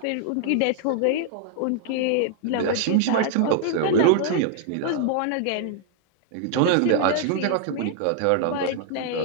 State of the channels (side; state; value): both; different; correlation 0.00